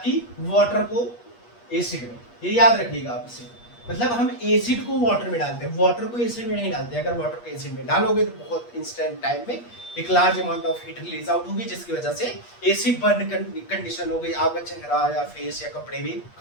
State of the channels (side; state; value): right; late; 8.4 ms